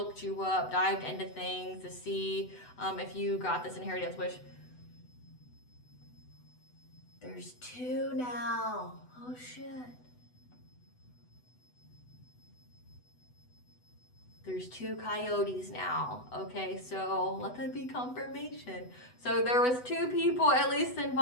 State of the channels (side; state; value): right; late; 8.0 ms